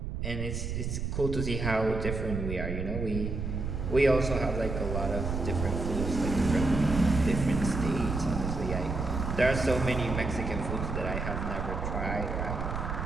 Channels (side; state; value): right; noise; rumble, 3 dB below the sound